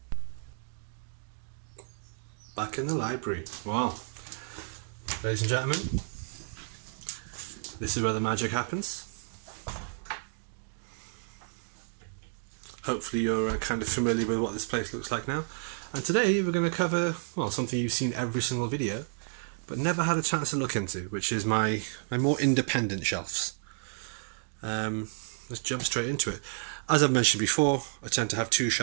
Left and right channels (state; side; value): silent; left; digital silence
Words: Back in the library. Wow. Ladies and gentlemen, this is where the magic happens. Hopefully you're kind of familiar with what this place looks like now. And today we're going to cover, well, something you've seen every single video, but never had a chance to look into, which is my more independent shelves. Let's jump straight into it. As I've mentioned before, I tend to have two